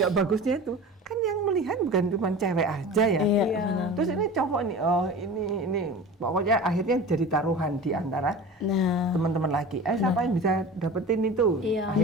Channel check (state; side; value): normal; both; correlation 0.35